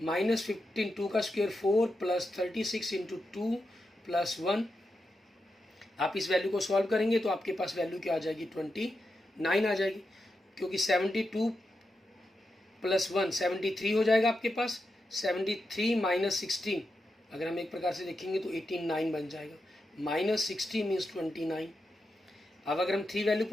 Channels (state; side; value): normal; both; correlation 0.87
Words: 15, 2 का स्क्वायर 4 प्लस 36 इंटू 2 प्लस 1। आप इस वैल्यू को सॉल्व करेंगे तो आपके पास वैल्यू क्या आ जाएगी, 29 आ जाएगी, क्योंकि 72 प्लस 1 73 हो जाएगा आपके पास। 73 माइनस 16 अगर हम एक प्रकार से देखेंगे तो 89 बन जाएगा, माइनस 60 मीन्स 29। अब अगर हम 3 वैल्यू